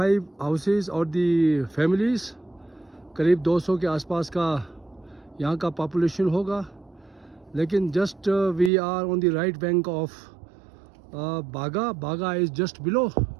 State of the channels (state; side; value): drops out; left; at 8.7 s